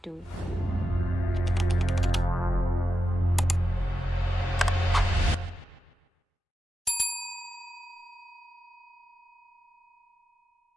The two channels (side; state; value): both; normal; correlation 0.89